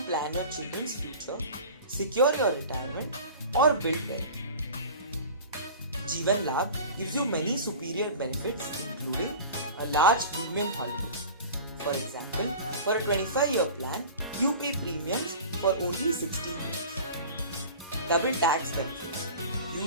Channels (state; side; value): inverted; both; correlation -0.37